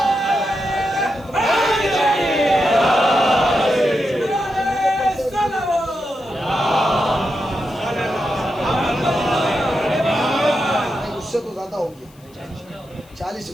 تو زیادہ ہو گیا، 40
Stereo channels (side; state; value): left; noise; hiss, 29 dB below the sound